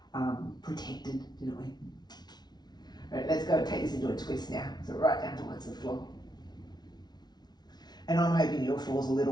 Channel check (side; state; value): right; late; 0.19 ms